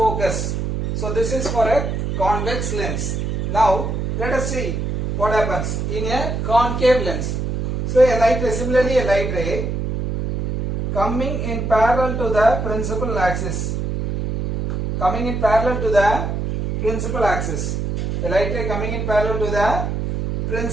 So this is for a convex lens. Now let us see what happens in a concave lens. So a light ray, similarly a light ray coming in parallel to the principal axis. Coming in parallel to the principal axis. A light ray coming in parallel to the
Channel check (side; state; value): right; noise; hum, 2 dB below the sound